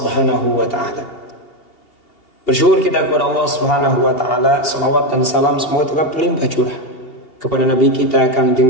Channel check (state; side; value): late; right; 2.8 ms